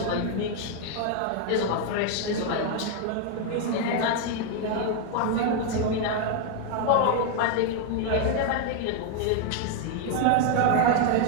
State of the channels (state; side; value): different; both; correlation 0.01